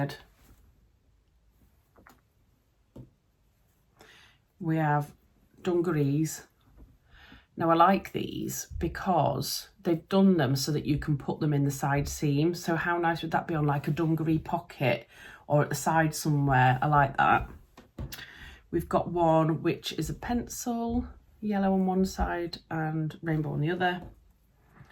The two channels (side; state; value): both; identical; correlation 1.00